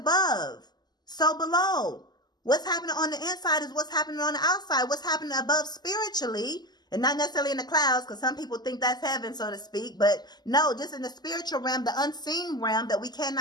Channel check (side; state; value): right; late; 0.20 ms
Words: so below. What's happening on the inside is what's happening on the outside. What's happening above spiritually, and not necessarily in the clouds, because some people think that's heaven, so to speak. But no, just in the spiritual realm, the unseen realm that we